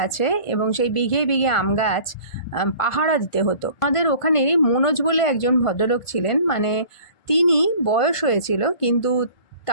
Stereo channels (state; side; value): late; right; 1.5 ms